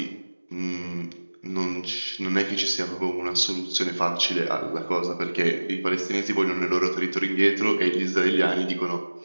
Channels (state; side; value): inverted; both; correlation -1.00